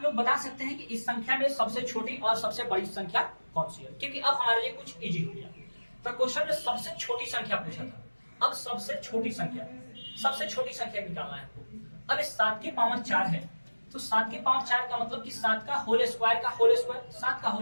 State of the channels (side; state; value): both; inverted; correlation -1.00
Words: लोग बता सकते हैं कि इस संख्या में सबसे छोटी और सबसे बड़ी संख्या कौन सी है, क्योंकि अब हमारे लिए कुछ इजी हो गया। तो क्वेश्चन में सबसे छोटी संख्या पूछा था, अब सबसे छोटी संख्या निकालना है आपको। अब इस 7 के पावर 4 है, तो 7 के पावर 4 का मतलब कि 7 का होल स्क्वायर का होल स्क्वायर, 7 का